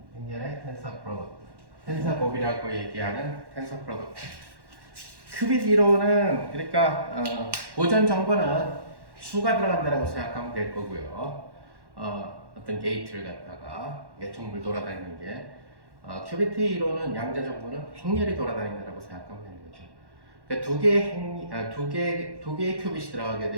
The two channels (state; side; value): late; left; 1.1 ms